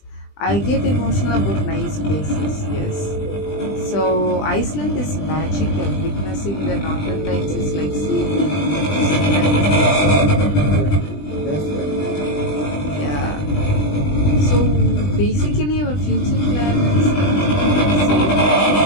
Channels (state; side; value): late; right; 20 ms